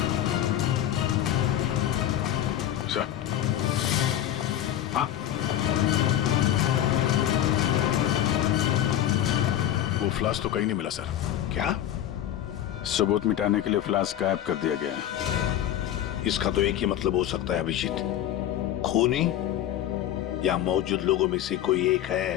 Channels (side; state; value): right; quieter; 11.6 dB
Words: फ्लास्क तो कहीं नहीं मिला सर। क्या? सबूत मिटाने के लिए फ्लास्क गायब कर दिया गया है। इसका तो एक ही मतलब हो सकता है अभिजीत, खूनी या मौजूद लोगों में से कोई एक है।